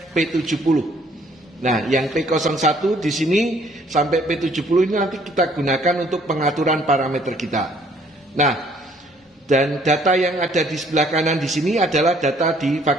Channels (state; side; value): normal; both; correlation 0.61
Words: P70. Nah, yang P01 di sini sampai P70 ini nanti kita gunakan untuk pengaturan parameter kita. Nah, dan data yang ada di sebelah kanan di sini adalah data di